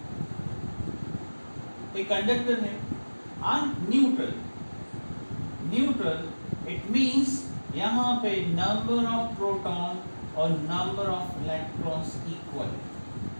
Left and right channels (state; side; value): inverted; both; correlation -1.00